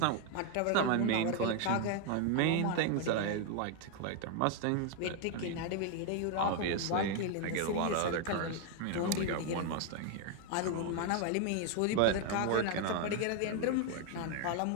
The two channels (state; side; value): different; both; correlation 0.01